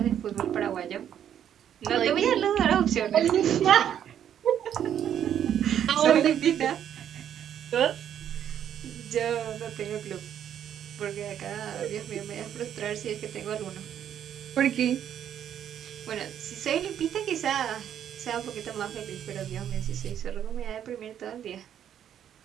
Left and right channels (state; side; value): quieter; left; 9.7 dB